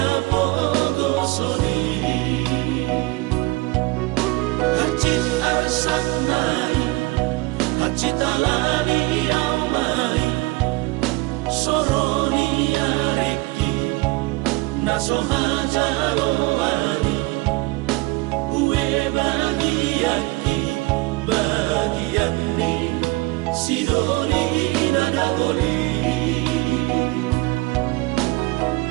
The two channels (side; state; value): left; quieter; 23.0 dB